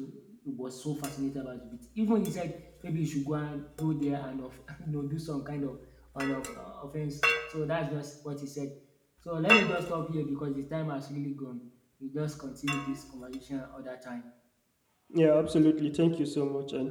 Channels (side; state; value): both; identical; correlation 1.00